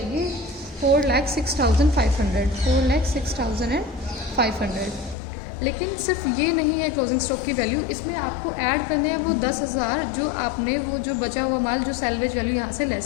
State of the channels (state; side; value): drops out; right; at 5.2 s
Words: 4,06,500, 4,06,500। लेकिन सिर्फ ये नहीं है क्लोजिंग स्टॉक की वैल्यू, इसमें आपको ऐड करने हैं वो 10,000 जो आपने वो जो बचा हुआ माल जो सैलवेज वैल्यू यहाँ से